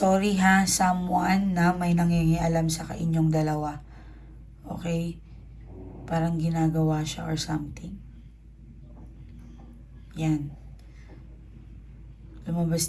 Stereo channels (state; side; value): identical; both; correlation 1.00